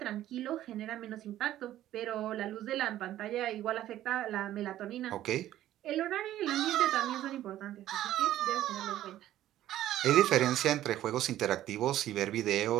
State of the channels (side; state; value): left; quieter; 13.1 dB